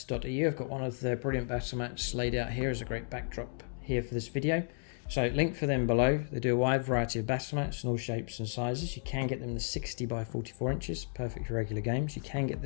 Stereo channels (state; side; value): silent; right; digital silence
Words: I've got one of the brilliant battle mats laid out here as a great backdrop here for this video. So link for them below. They do a wide variety of battle mats in all shapes and sizes. You can get them in the 60 by 44 inches, perfect for regular games. You can get